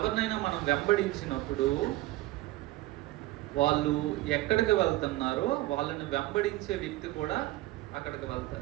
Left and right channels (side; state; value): left; quieter; 17.7 dB